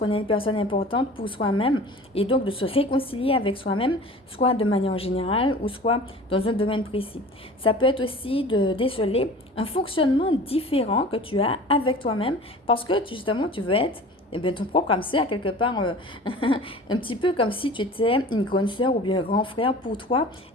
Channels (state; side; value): normal; both; correlation 0.41